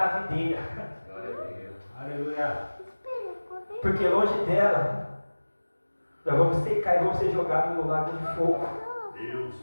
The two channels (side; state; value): both; inverted; correlation -1.00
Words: videira. Aleluia. Porque longe dela, nós vamos secar e vamos ser jogados no lago de fogo. Deus